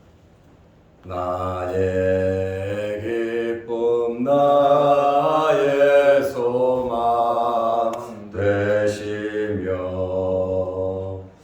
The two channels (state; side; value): identical; both; correlation 1.00